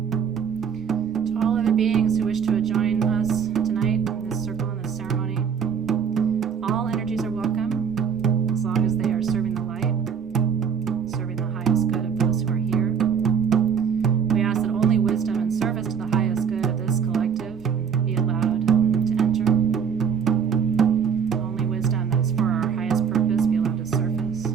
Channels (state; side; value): quieter; left; 7.1 dB